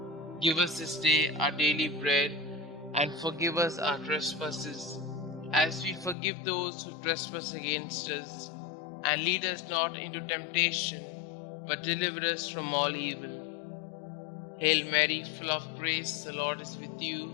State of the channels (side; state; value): right; drops out; at 6.2 s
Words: Give us this day our daily bread, and forgive us our trespasses, as we forgive those who trespass against us. And lead us not into temptation, but deliver us from all evil. Hail Mary, full of grace, the Lord is with you.